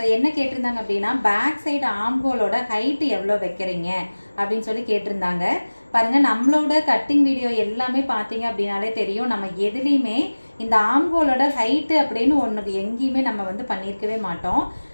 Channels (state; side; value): inverted; both; correlation -1.00